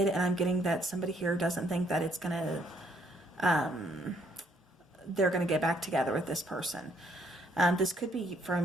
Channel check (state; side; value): normal; both; correlation 0.68